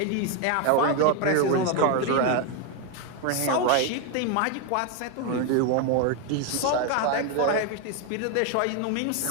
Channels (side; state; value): both; different; correlation 0.01